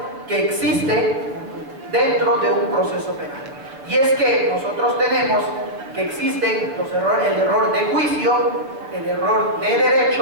que existen dentro de un proceso penal. Y es que nosotros tenemos que existen los errores, el error de juicio, el error de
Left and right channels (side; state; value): left; late; 7.2 ms